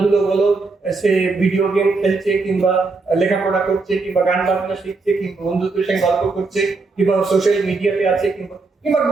বলো, সে ভিডিও গেম খেলছে কিংবা লেখাপড়া করছে কিংবা গান বাজনা শিখছে কিংবা বন্ধুদের সঙ্গে গল্প করছে কিংবা সোশ্যাল মিডিয়াতে আছে কিংবা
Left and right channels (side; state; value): left; quieter; 3.9 dB